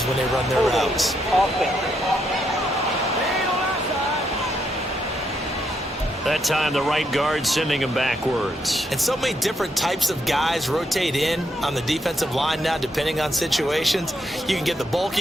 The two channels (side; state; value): both; normal; correlation 0.77